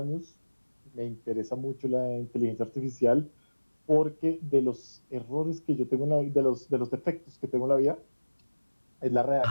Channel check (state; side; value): inverted; both; correlation -1.00